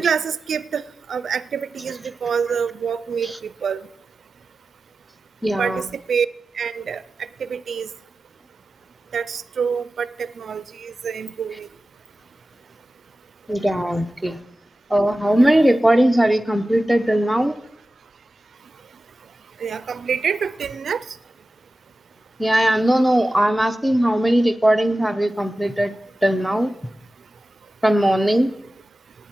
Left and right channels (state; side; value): normal; both; correlation 0.94